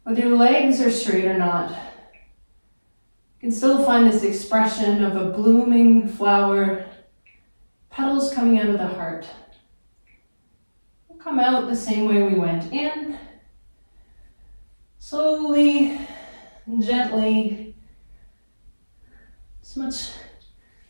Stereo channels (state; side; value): inverted; both; correlation -1.00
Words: whether your legs are straight or not, you can still find this expression of a blooming flower, petals coming out of the heart. We'll come out the same way we went in, slowly and gently, as much